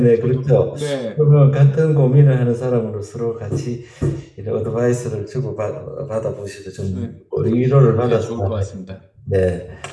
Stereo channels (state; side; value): identical; both; correlation 1.00